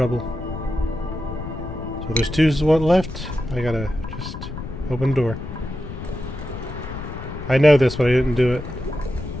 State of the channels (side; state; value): left; noise; rumble, 9 dB below the sound